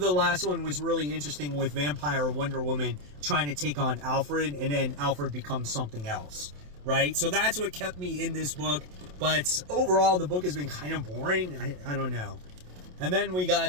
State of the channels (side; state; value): left; late; 27 ms